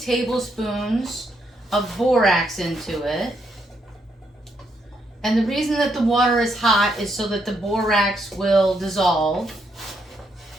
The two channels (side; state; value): both; normal; correlation 0.77